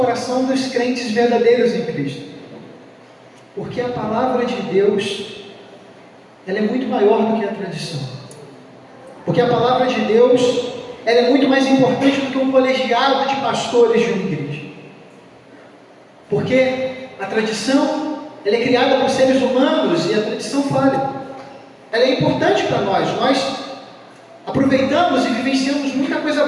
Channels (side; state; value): both; identical; correlation 1.00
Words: dos crentes verdadeiros em Cristo. Porque a palavra de Deus, ela é muito maior do que a tradição. Porque a palavra de Deus, ela é muito mais importante do que um colegiado de pastores de uma igreja. Porque a tradição, ela é criada por seres humanos e a tradição falha. Ela é importante para nós. Nós aproveitamos e vivenciamos muita coisa